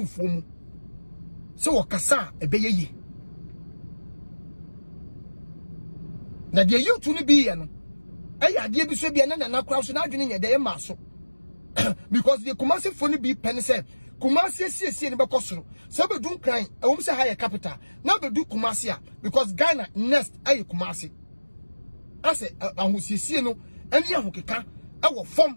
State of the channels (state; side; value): inverted; both; correlation -1.00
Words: mu se wakasa ebeyeye na de yutu ni bi ye no eya de bi so bi na na kra so na adwene nye de ma so because the Kumasifo ni bi pen se Kumasi sie ni bekosoro se be dun kran ewom se higher capital na be du Kumasi a because Ghana next ayi Kumasi ase ahusiesie no eni ahokeka ewo fom